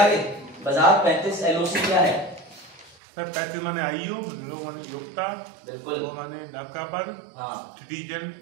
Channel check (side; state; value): left; drops out; at 3.0 s